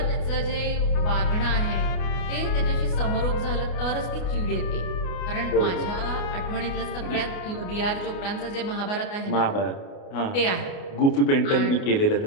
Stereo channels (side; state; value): right; late; 29 ms